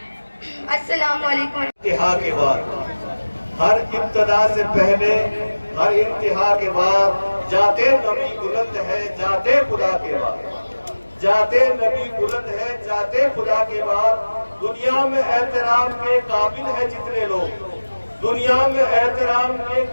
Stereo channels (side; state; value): both; inverted; correlation -1.00